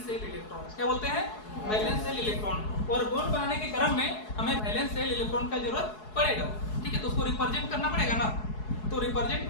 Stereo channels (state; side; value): late; right; 4.7 ms